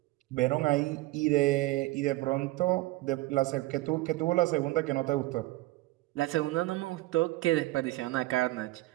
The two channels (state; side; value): quieter; left; 19.0 dB